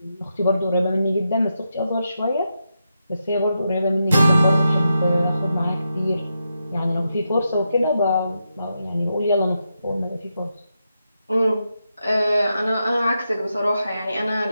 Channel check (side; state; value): both; inverted; correlation -0.86